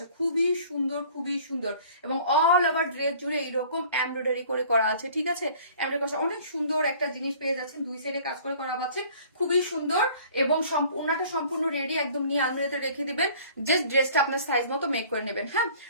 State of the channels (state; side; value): inverted; both; correlation -0.50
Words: খুবই সুন্দর খুবই সুন্দর। এবং অল ওভার ড্রেস জুড়ে এইরকম এমব্রয়ডারি করে করা আছে। ঠিক আছে, অনেক সুন্দর একটা জিনিস পেয়ে যাচ্ছেন, দুই সাইডে কাজ করে করা পাচ্ছেন, খুবই সুন্দর। এবং ওনাটা সম্পূর্ণ রেডি, একদম নিয়ে আলমারিতে রেখে দিবেন, জাস্ট ড্রেসটা আপনার সাইজ মতো মেক করে নেবেন। হ্যাঁ,